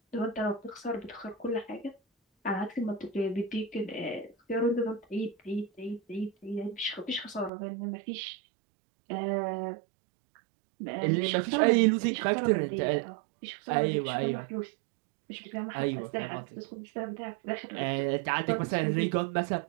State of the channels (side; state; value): left; drops out; at 7.5 s